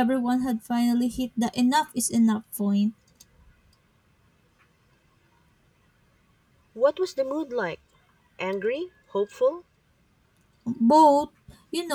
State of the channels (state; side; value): identical; both; correlation 1.00